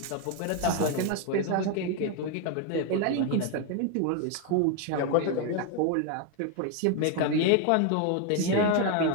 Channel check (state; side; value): different; both; correlation 0.01